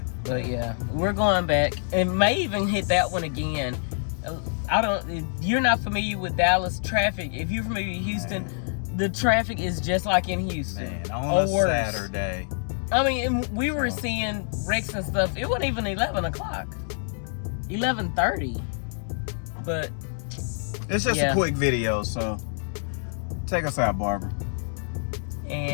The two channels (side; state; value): right; silent; digital silence